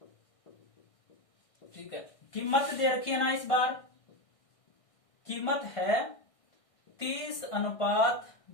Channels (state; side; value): late; right; 1.6 ms